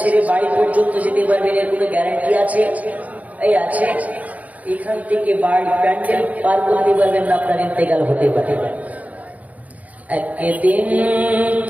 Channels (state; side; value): late; left; 0.073 ms